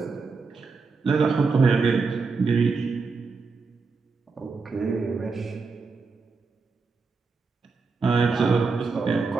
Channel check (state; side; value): quieter; left; 4.5 dB